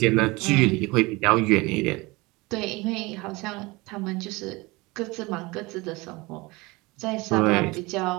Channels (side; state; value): left; quieter; 23.5 dB